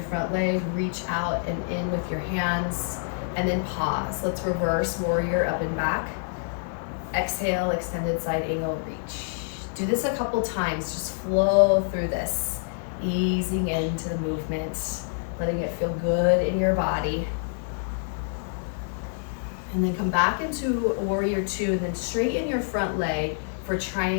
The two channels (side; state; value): right; silent; digital silence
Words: front leg, reach out and in with your hands, and then pause. Let's reverse warrior up and back. Exhale, extended side angle, reach. Do this a couple times, just flow through this. Easing into the movement, letting it feel good in your body. And then come back into warrior two, and then straighten your front leg for